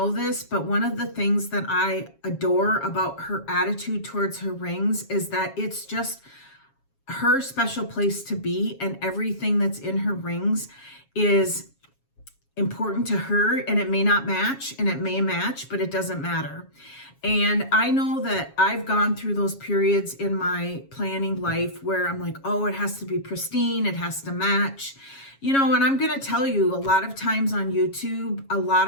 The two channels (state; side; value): late; right; 7.3 ms